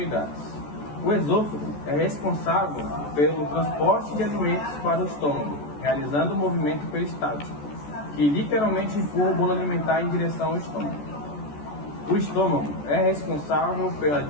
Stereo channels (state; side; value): late; right; 14 ms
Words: O esôfago é responsável pelo transporte de alimentos para o estômago, realizando o movimento peristáltico, que literalmente empurra o bolo alimentar em direção ao estômago. O estômago é responsável pela